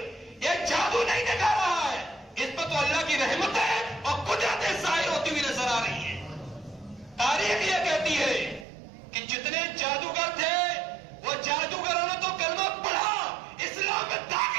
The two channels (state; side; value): drops out; left; at 8.7 s